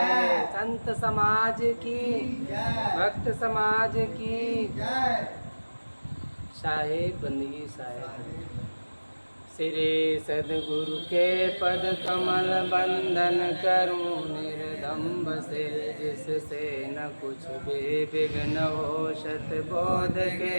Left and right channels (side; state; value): both; inverted; correlation -1.00